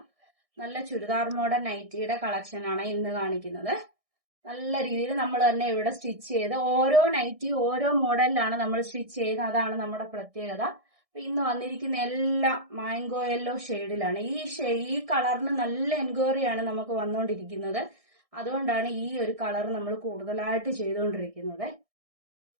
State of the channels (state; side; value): late; left; 1.6 ms